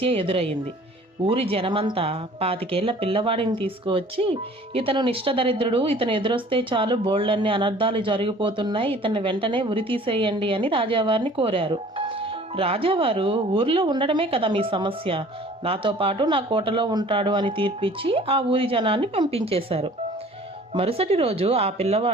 ఎదురయ్యింది. ఊరి జనమంతా 25 పిల్లవాడిని తీసుకువచ్చి, ఇతను నిష్టదరిద్రుడు, ఇతను ఎదురొస్తే చాలు బోళ్ళన్ని అనర్థాలు జరిగిపోతున్నాయి, ఇతన్ని వెంటనే ఉరి తీసేయండి అని రాజావారిని కోరారు. రాజావారు, ఊరిలో ఉండడమే కదా మీ సమస్య, నాతో పాటు నా కోటలో ఉంటాడు అని తీర్పిచ్చి ఆ ఊరి జనాన్ని పంపించేశారు. మరుసటి రోజు ఆ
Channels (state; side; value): normal; both; correlation 0.50